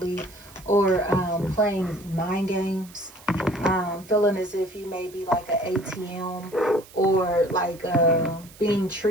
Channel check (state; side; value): noise; right; hiss, 22 dB below the sound